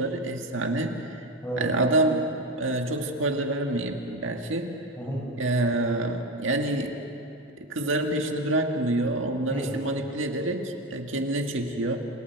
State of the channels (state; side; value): normal; both; correlation 0.19